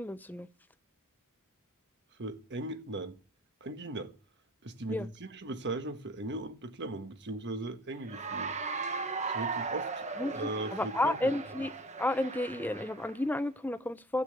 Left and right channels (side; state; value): both; normal; correlation 0.46